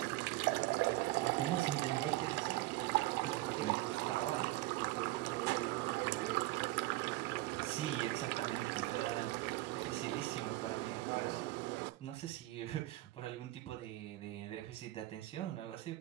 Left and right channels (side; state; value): left; quieter; 18.5 dB